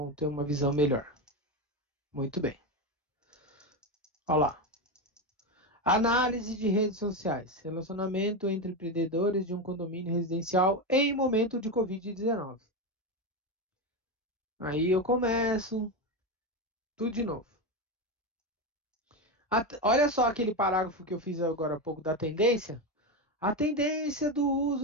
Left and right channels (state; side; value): normal; both; correlation 0.14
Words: ter uma visão melhor. Muito bem. Olha lá. Análise de redes sociais. Relacionamento entre empreendedores de um condomínio residencial em momento de Covid-19. Aí eu começo tudo de novo. Olha só aquele parágrafo que eu fiz agora há pouco da tendência. A tendência do